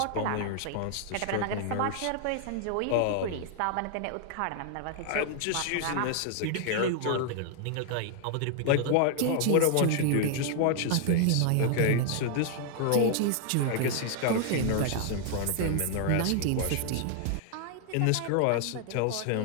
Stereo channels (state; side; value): different; both; correlation 0.00